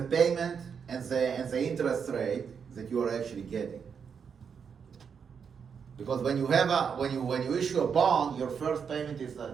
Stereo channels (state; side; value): quieter; left; 6.7 dB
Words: payment and the interest rate that you are actually getting. Because when you issue a bond, your first payment is